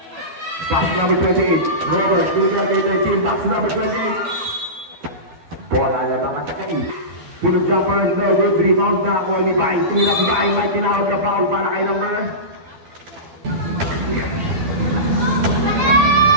Pass number 28. Robert, binigay kay 13. Box number 28. Bola na bang atakay. Tulog jumper, no good. Rebound na ako ni Bay. Tumilap si Bay. May tinawag na foul para kay number.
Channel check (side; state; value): left; late; 12 ms